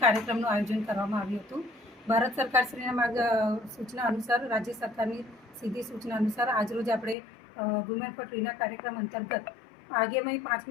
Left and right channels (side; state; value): right; drops out; at 7.2 s